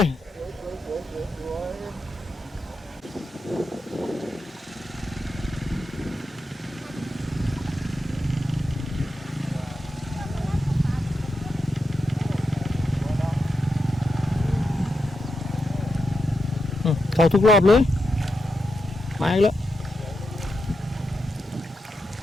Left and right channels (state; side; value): normal; both; correlation 0.86